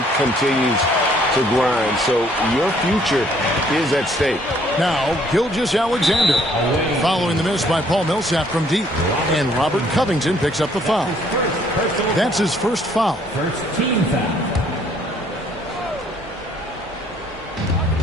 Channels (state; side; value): normal; both; correlation 0.63